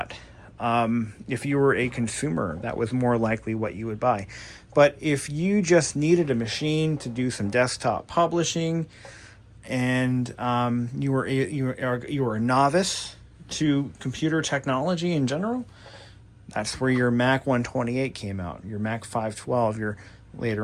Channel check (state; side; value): identical; both; correlation 1.00